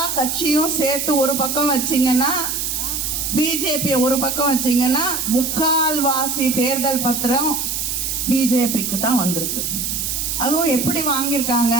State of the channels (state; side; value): noise; right; hiss, 2 dB below the sound